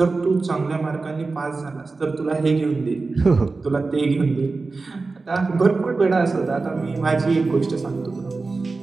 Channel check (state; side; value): quieter; left; 3.9 dB